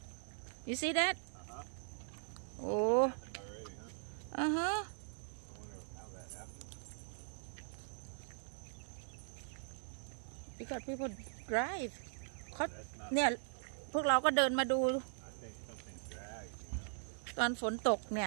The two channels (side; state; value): left; silent; digital silence